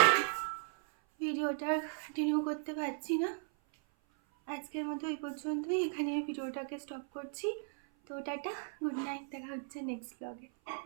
ভিডিওটা কন্টিনিউ করতে পারছি না। আজকের মতো এই পর্যন্তই, এখানে ভিডিওটাকে স্টপ করছি। তো টাটা, গুড নাইট, দেখা হচ্ছে নেক্সট ব্লগে।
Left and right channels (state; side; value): silent; left; 54 dB below the other